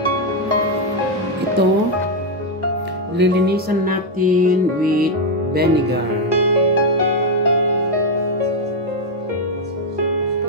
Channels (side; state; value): both; normal; correlation 0.03